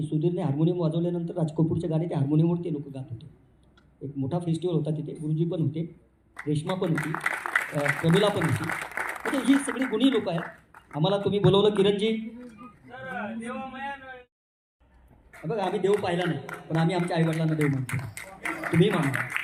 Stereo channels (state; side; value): identical; both; correlation 1.00